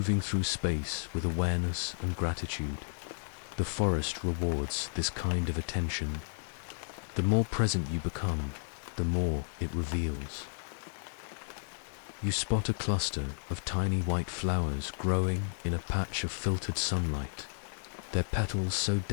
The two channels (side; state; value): right; silent; digital silence